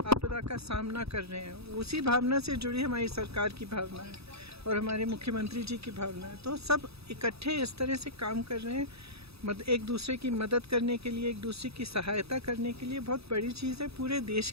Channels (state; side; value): late; left; 0.78 ms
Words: आपदा का सामना कर रहे हैं, उसी भावना से जुड़ी हमारी सरकार की भावना है और हमारे मुख्यमंत्री जी की भावना है। तो सब इकट्ठे इस तरह से काम कर रहे हैं, एक दूसरे की मदद करने के लिए, एक दूसरे की सहायता करने के लिए। बहुत बड़ी चीज़ है, पूरे देश